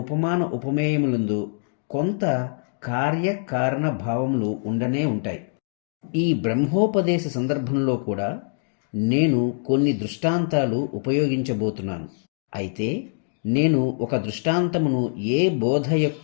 ఉపమేయములందు కొంత కార్యకారణ భావములు ఉండనే ఉంటాయి. ఈ బ్రహ్మోపదేశ సందర్భంలో కూడా నేను కొన్ని దృష్టాంతాలు ఉపయోగించబోతున్నాను. అయితే నేను ఒక దృష్టాంతమును ఏ బోధ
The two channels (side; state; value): right; silent; digital silence